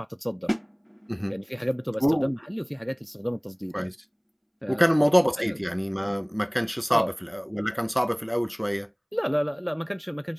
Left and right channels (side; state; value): both; identical; correlation 1.00